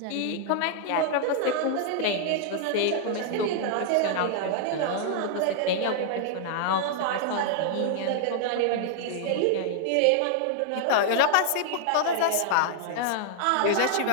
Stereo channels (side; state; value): both; different; correlation -0.01